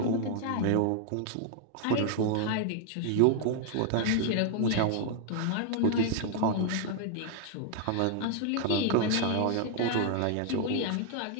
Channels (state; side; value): different; both; correlation 0.00